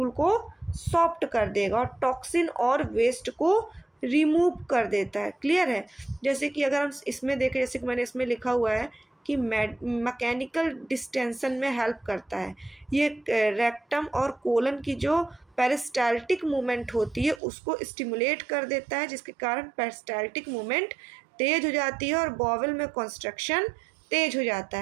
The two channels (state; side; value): drops out; left; at 17.4 s